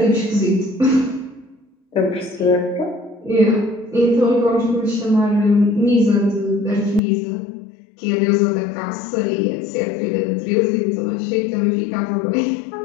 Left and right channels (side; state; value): right; drops out; at 7.0 s